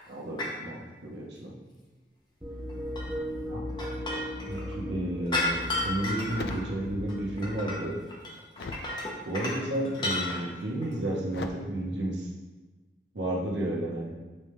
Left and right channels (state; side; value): normal; both; correlation 0.49